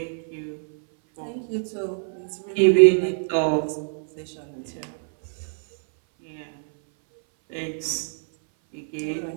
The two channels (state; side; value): silent; left; 60 dB below the other